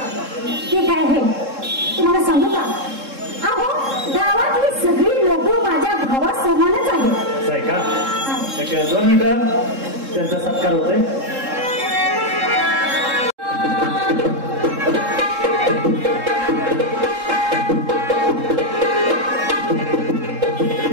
ते काय आहे तुम्हाला सांगू का अहो गावातली सगळी लोक माझ्या भावासमानच आहेत आहे का 2 मिनिटं त्यांचा सत्कार होतोय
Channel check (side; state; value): left; late; 3.7 ms